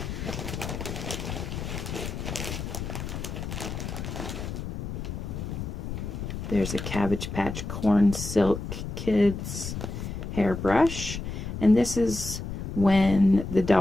There's a Cabbage Patch Corn Silk Kids hairbrush. And this is when the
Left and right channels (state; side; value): noise; left; rumble, 6 dB below the sound